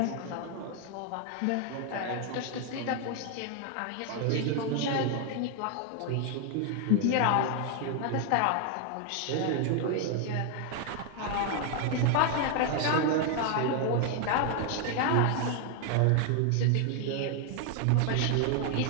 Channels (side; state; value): both; different; correlation 0.00